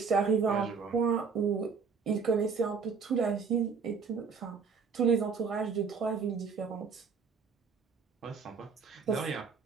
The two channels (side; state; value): left; quieter; 5.5 dB